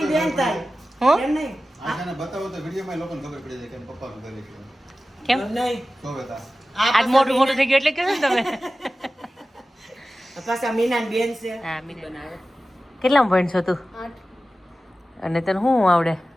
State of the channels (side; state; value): both; normal; correlation 0.95